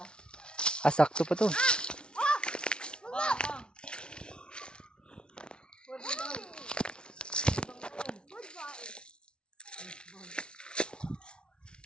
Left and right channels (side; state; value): right; late; 0.056 ms